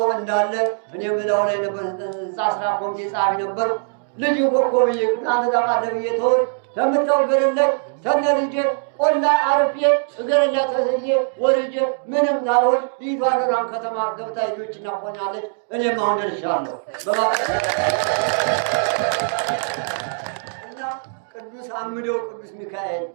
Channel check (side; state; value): left; silent; digital silence